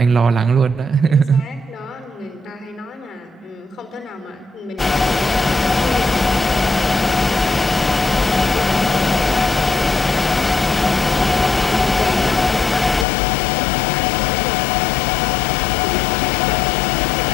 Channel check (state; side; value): drops out; right; at 13.1 s